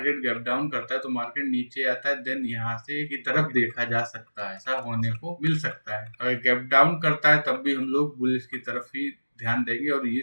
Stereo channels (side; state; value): both; inverted; correlation -1.00